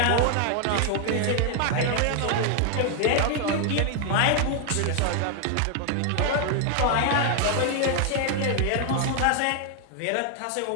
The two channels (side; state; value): both; different; correlation 0.00